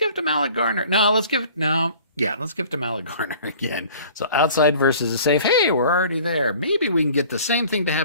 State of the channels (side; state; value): both; inverted; correlation -0.48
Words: it to Mallet Garner. Let's give it to Mallet Garner again. So outside versus a safe. Hey, we're already there. Maybe we can get the same thing to